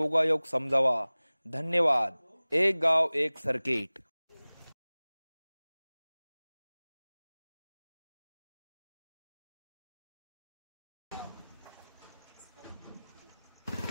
समजावा. धन्यवाद. एक गाव एक सर्किट.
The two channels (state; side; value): inverted; both; correlation -0.99